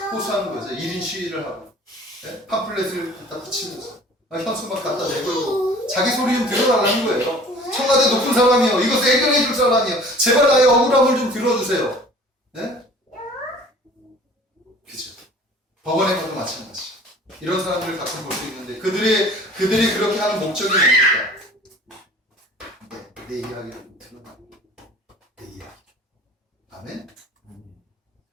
호소하는 거죠. 1인 시위를 하고 팜플렛을 갖다 붙이면서 현수막 갖다 내걸고 자기 소리 좀 들어달라는 거예요. 청와대 높은 사람이요. 이것을 해결해 줄 사람이요. 제발 나의 억울함을 좀 들어주세요. 네? 그죠. 법원에 가도 마찬가지. 이런 사람들을 가끔 볼 수 있는데 그들이 그렇게 하는 목적이 뭡니까? 내 이야기를 들어봐. 내 이야기. 아멘?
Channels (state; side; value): normal; both; correlation 0.48